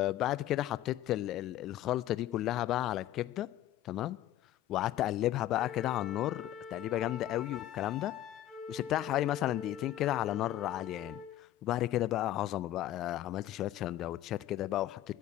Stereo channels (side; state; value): right; quieter; 13.4 dB